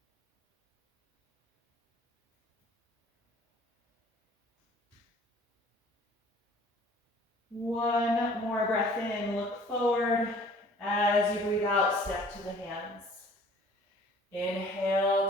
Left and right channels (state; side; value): normal; both; correlation 0.52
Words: One more breath in, look forward. As you breathe out, step to the hands.